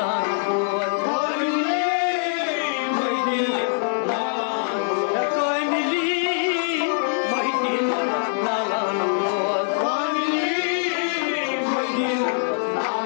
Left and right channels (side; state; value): right; silent; digital silence